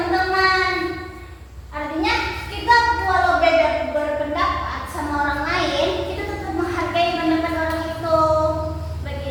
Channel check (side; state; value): both; identical; correlation 1.00